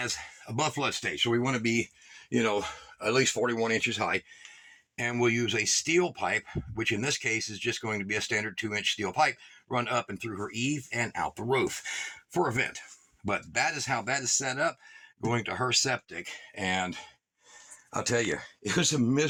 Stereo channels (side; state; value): both; identical; correlation 1.00